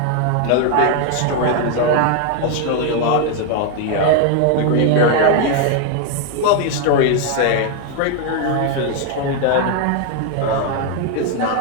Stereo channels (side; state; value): both; different; correlation 0.00